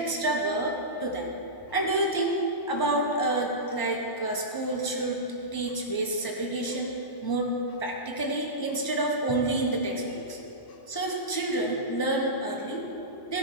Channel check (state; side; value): late; right; 1.0 ms